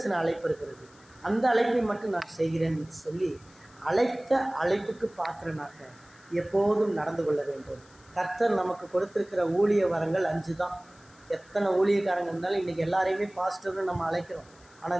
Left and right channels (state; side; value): noise; left; hiss, 28 dB below the sound